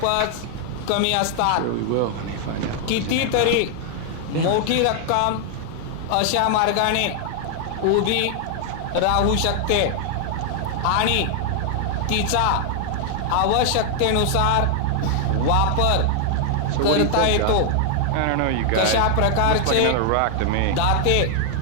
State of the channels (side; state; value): both; different; correlation 0.00